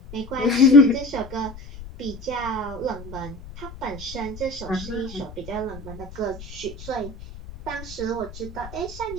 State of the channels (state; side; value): noise; left; rumble, 14 dB below the sound